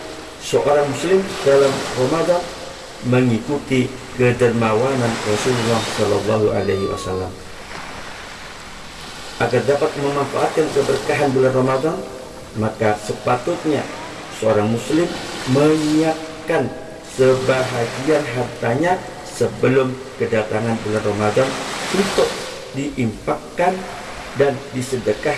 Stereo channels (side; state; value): both; identical; correlation 1.00